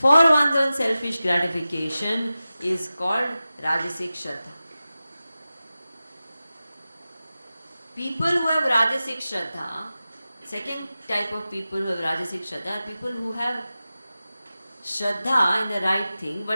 one's own selfish gratification is called Rajasic Shraddha. People who have Rajasic Shraddha, second type of people who have Rajasic Shraddha are people who have Shraddha in the right thing,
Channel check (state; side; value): inverted; both; correlation -0.95